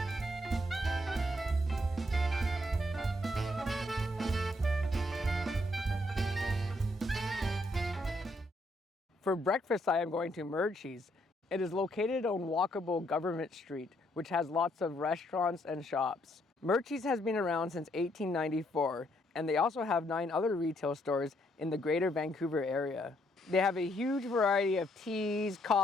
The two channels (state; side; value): normal; both; correlation 0.72